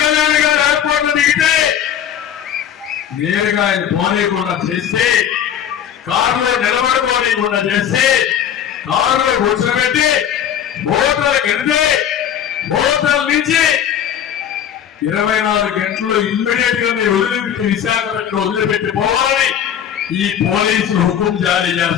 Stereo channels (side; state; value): right; quieter; 9.5 dB